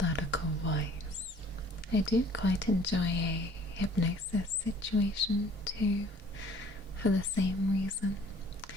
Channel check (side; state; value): both; normal; correlation 0.53